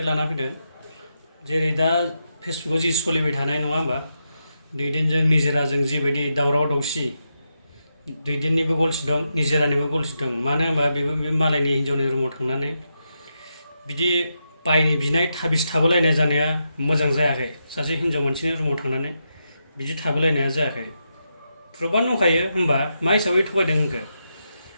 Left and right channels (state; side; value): inverted; both; correlation -0.85